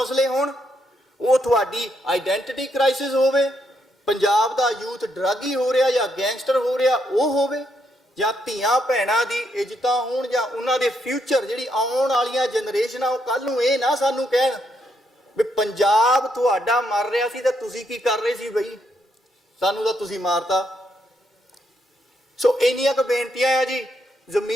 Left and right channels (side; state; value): both; normal; correlation 0.77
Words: ਹੋਣ, ਉਹ ਤੁਹਾਡੀ ਆਈਡੈਂਟੀਟੀ ਕ੍ਰਾਈਸਿਸ ਹੋਵੇ, ਪੰਜਾਬ ਦਾ ਯੂਥ ਡਰੱਗੀ ਹੋ ਰਿਹਾ ਜਾਂ ਗੈਂਗਸਟਰ ਹੋ ਰਿਹਾ ਉਹ ਹੋਵੇ, ਜਾਂ ਧੀਆਂ ਭੈਣਾਂ ਦੀ ਇੱਜ਼ਤਾਂ ਹੋਣ, ਜਾਂ ਉਹਨਾਂ ਦੇ ਫਿਊਚਰ ਜਿਹੜੀ ਆਉਣ ਵਾਲੀਆਂ ਜਨਰੇਸ਼ਨਾਂ ਉਹ ਕੱਲ ਨੂੰ ਇਹ ਨਾ ਸਾਨੂੰ ਕਹਿਣ ਵੀ ਪੰਜਾਬ ਤੁਹਾਡਾ ਮਰ ਰਿਹਾ ਸੀ ਤੇ ਤੁਸੀਂ ਕੀ ਕਰ ਰਹੇ ਸੀ ਬਈ, ਸਾਨੂੰ ਤਾਂ ਤੁਸੀਂ ਮਾਰਤਾ। ਸੋ ਇੰਨੀਆਂ ਕੁ ਬੇਨਤੀਆਂ ਆ ਜੀ,